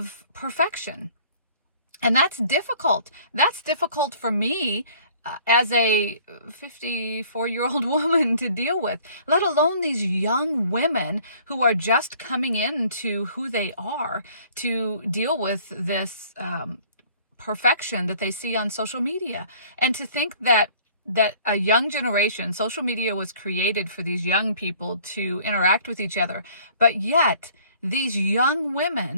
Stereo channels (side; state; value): both; inverted; correlation -0.54